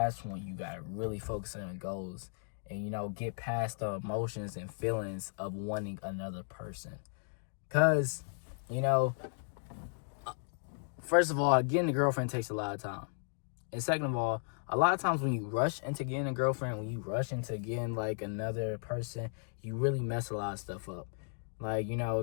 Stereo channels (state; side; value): silent; right; digital silence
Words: when you gotta really focus on your goals and, you know, get past the emotions and feelings of wanting another person. Cause, you know, first of all, getting a girlfriend takes a lot of time. And second of all, a lot of times when you rush into getting a girlfriend, when you rush into getting, like, another person, you really mess a lot of stuff up. Like, you know,